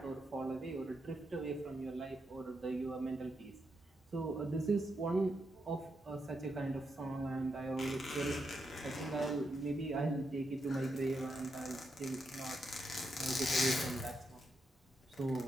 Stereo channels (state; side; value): normal; both; correlation 0.82